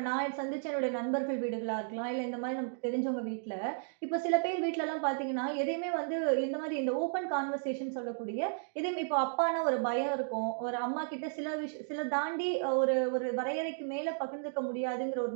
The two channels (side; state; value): left; silent; digital silence